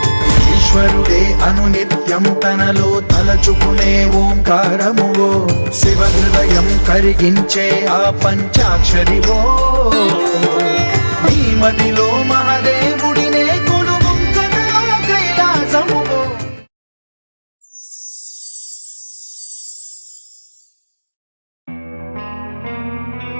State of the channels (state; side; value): inverted; both; correlation -1.00